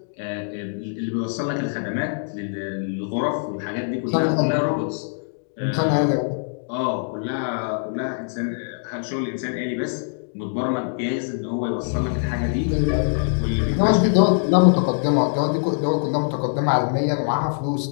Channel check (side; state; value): right; silent; digital silence